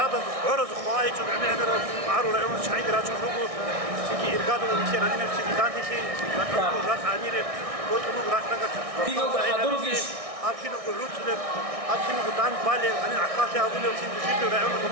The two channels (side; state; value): left; late; 1.6 ms